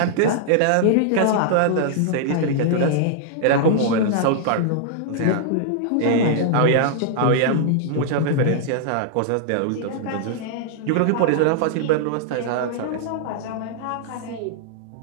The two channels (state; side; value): different; both; correlation -0.01